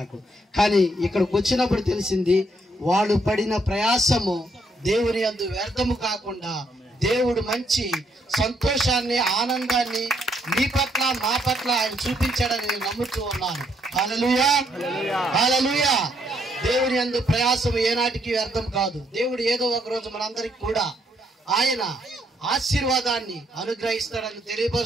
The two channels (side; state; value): both; normal; correlation 0.73